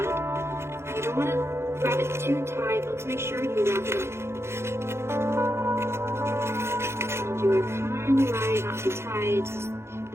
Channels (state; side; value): late; left; 0.12 ms